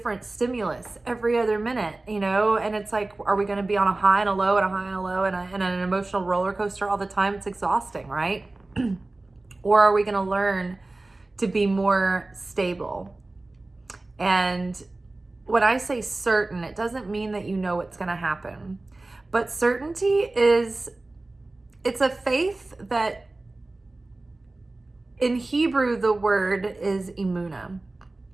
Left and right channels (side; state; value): left; quieter; 3.0 dB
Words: stimulus every other minute, and it's like, are we going to be on a high and a low and a high and a low and an emotional roller coaster all the time? It's exhausting, right? Or are we going to learn to be more stable? And when I say certain, it doesn't mean that you know what's going to happen. But certainty it's a faith that in Hebrew, the word is emunah.